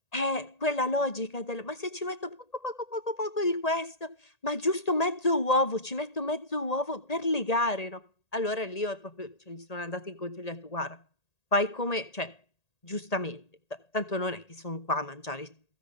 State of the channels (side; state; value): right; late; 1.8 ms